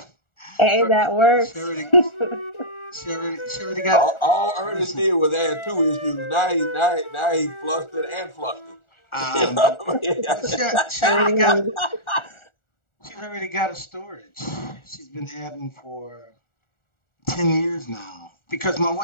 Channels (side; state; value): right; late; 1.4 ms